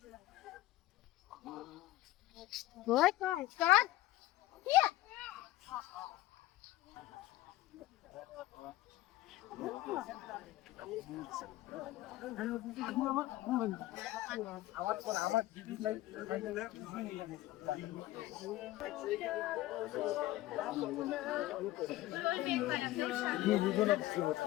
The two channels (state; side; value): quieter; right; 16.1 dB